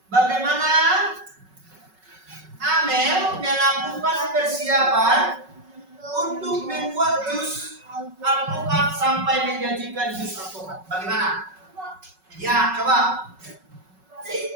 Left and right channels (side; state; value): left; late; 5.4 ms